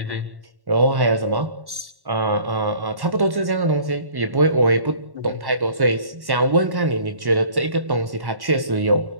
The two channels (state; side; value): late; left; 1.1 ms